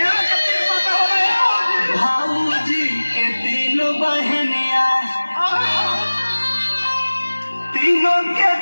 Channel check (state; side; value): inverted; both; correlation -1.00